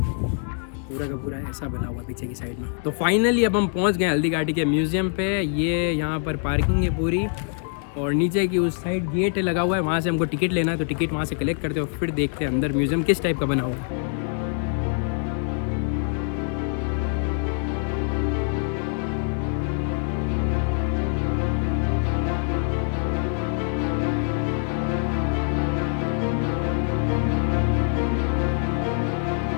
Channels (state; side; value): silent; right; 56 dB below the other